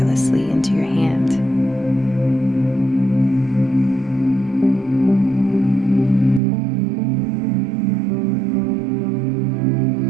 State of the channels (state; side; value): drops out; left; at 6.4 s